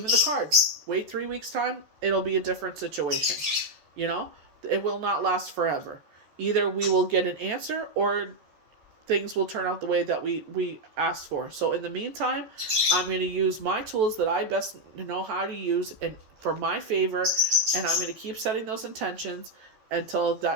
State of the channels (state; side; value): late; left; 14 ms